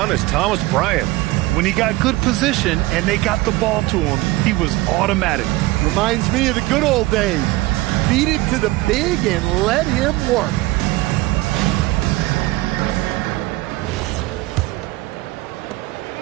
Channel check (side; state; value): left; quieter; 19.3 dB